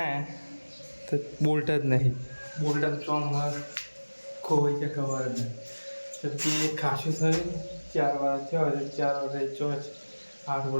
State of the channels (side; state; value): both; inverted; correlation -1.00